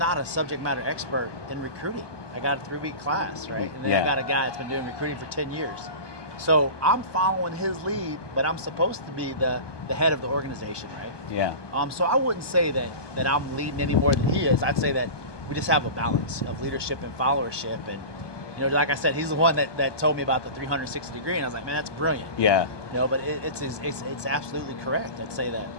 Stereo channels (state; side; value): late; right; 1.2 ms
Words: a subject matter expert in recruiting. I got a 3-week class, right? And then I got a guy that's been doing recruiting for 10 years. So I'm following his lead, but I'm supposed to be the head of the organization, right? Yeah. So I wouldn't say that I'm leading any more than he is. I'd say that we just have a balance of leadership and followership. And, like I said, he's the one that told me about the 360 degree, and I was like, man, that's brilliant. Yeah. But it's absolutely correct. I'd say that